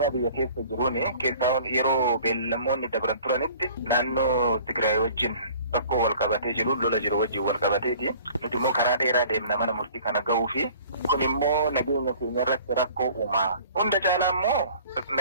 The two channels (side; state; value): both; inverted; correlation -0.49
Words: biyya keessa jiruun keessaa yeroo beellamoonni dabran turanitti naannoo Tigraay wajjin rakkoo wal qabatee jiru lola jiru wajjin wal qabateeti. Nuti immoo karaa dheeraa deemna mana murtii kana gahuu fi kun immoo nageenya keenya irratti rakkoo uumaa. Hunda caalaa immoo